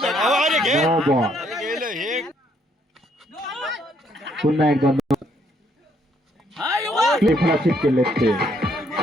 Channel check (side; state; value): both; normal; correlation 0.70